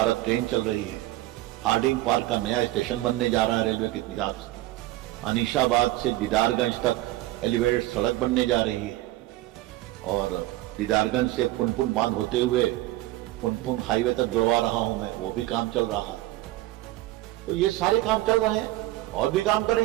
ट्रेन चल रही है, हार्डिंग पार्क का नया स्टेशन बनने जा रहा है रेलवे के हिसाब से, अनीशाबाद से दीदारगंज तक एलिवेटेड सड़क बनने जा रही है, और दीदारगंज से पुनपुन बांध होते हुए पुनपुन हाईवे तक जुड़वा रहा हूं मैं, वो भी काम चल रहा है। तो ये सारे काम चल रहे हैं और भी काम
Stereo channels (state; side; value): quieter; left; 17.0 dB